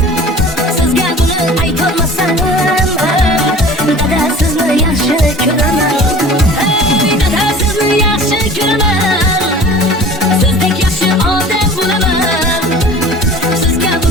Sizga buni aytolmasam, dada sizni yaxshi ko'raman. Hey dada sizni yaxshi ko'raman, sizdek yaxshi odam bo'laman. Sizga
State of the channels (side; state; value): both; normal; correlation 0.43